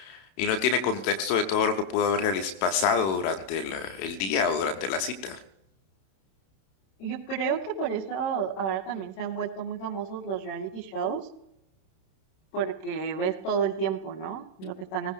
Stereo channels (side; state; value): right; late; 31 ms